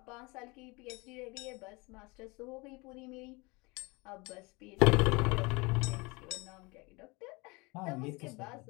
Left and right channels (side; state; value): right; quieter; 26.3 dB